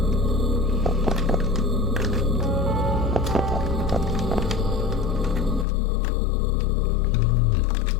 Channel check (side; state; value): right; drops out; at 5.7 s